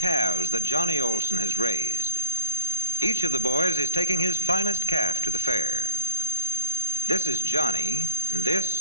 that Johnny Olson has raised. Each of the boys is taking his finest calf to the fair. This is Johnny, and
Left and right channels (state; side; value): inverted; both; correlation -0.39